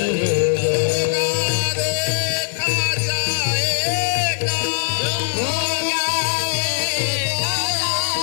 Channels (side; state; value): right; silent; digital silence